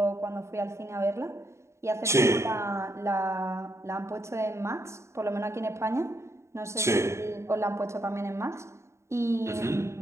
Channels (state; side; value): late; left; 0.14 ms